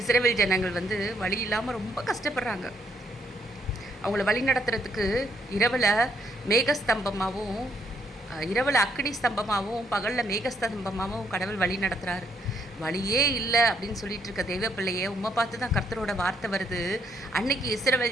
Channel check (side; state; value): both; normal; correlation 0.71